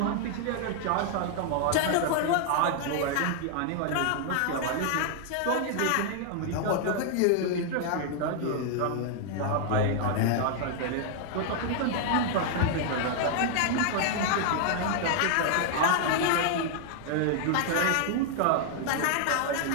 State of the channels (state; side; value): different; both; correlation 0.00